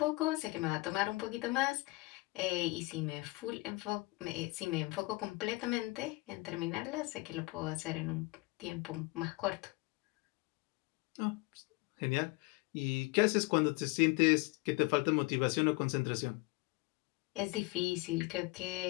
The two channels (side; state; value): right; quieter; 24.2 dB